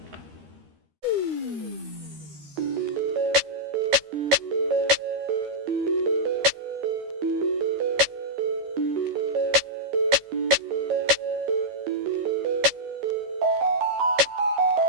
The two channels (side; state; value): left; late; 13 ms